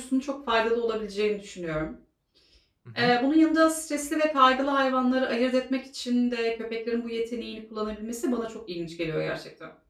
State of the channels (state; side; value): identical; both; correlation 1.00